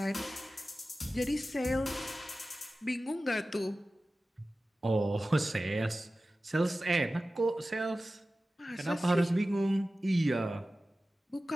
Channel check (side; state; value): both; normal; correlation 0.95